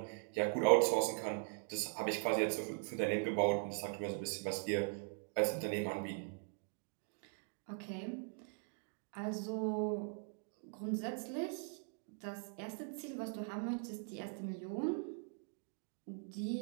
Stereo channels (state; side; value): silent; left; 50 dB below the other